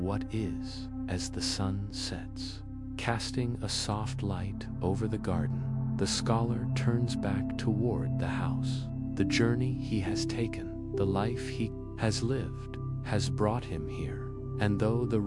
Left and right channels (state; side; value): identical; both; correlation 1.00